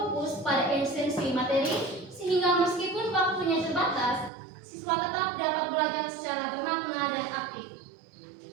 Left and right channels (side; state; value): left; drops out; at 4.3 s